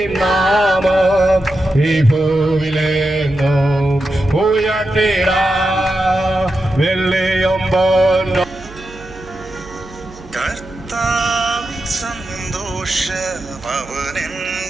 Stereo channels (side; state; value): right; noise; hum, 19 dB below the sound